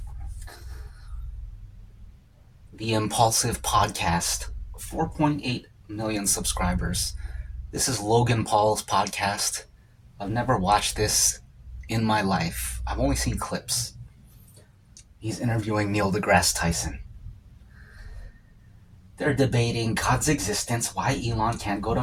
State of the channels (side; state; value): both; identical; correlation 1.00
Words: the Impulsive Podcast, 4.8 million subscribers. This is Logan Paul's podcast. I've never watched this in my life. I've only seen clips. He's interviewing Neil deGrasse Tyson. They're debating God's existence, why Elon can't go to